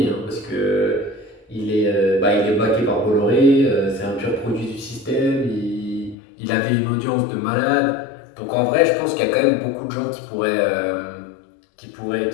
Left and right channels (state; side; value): drops out; right; at 6.2 s